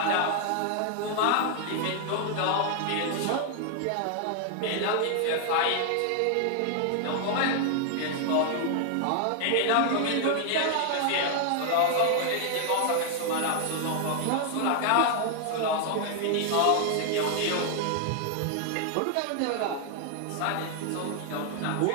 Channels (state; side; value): different; both; correlation 0.00